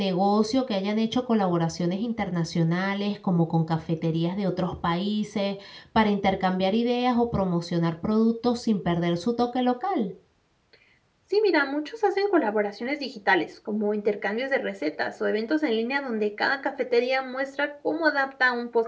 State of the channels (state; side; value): identical; both; correlation 1.00